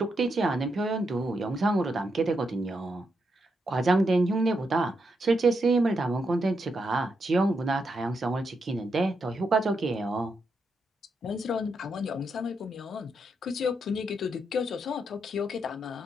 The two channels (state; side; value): normal; both; correlation 0.82